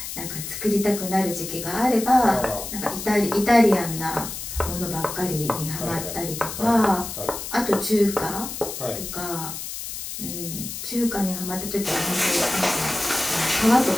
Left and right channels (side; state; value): left; noise; hiss, 7 dB below the sound